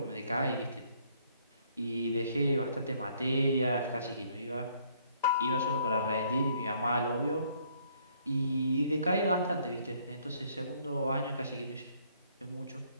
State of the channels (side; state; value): both; inverted; correlation -0.65